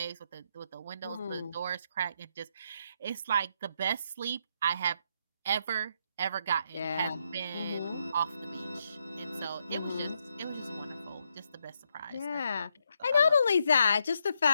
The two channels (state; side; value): inverted; both; correlation -0.78